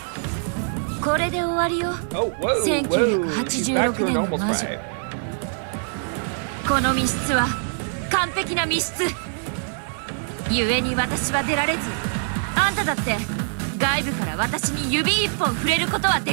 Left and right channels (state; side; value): silent; left; 61 dB below the other